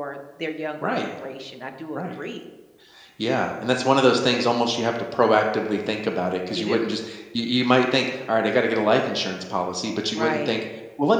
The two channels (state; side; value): identical; both; correlation 1.00